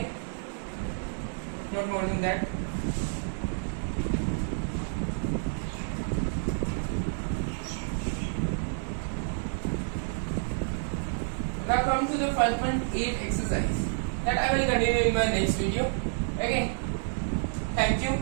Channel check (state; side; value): silent; left; 58 dB below the other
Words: Not more than that. Now come to the 5.8 exercise that I will continue in my next video. Okay, thank you